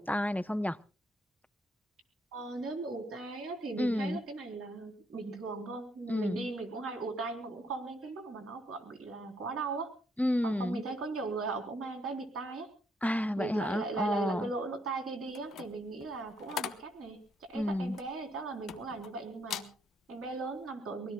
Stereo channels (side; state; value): both; normal; correlation 0.72